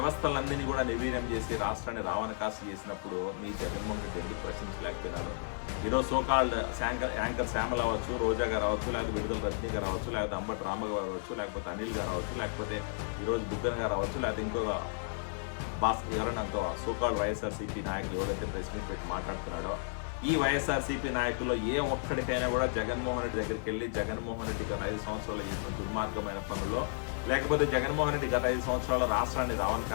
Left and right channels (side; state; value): right; silent; digital silence